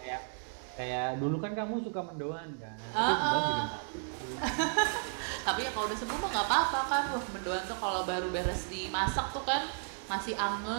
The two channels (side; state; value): left; silent; 55 dB below the other